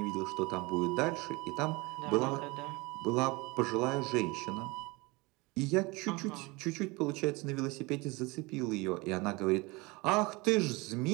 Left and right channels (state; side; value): quieter; left; 24.7 dB